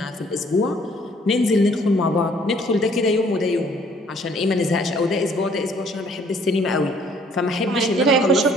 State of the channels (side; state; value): both; normal; correlation 0.60